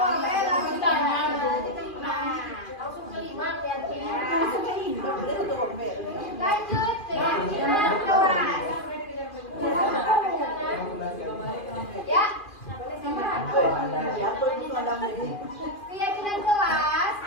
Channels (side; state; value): right; late; 2.4 ms